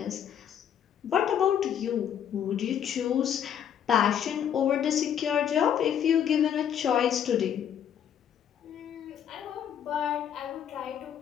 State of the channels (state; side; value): quieter; right; 9.1 dB